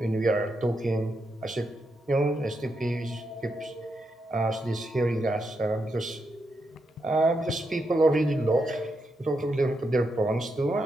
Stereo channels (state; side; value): normal; both; correlation 0.83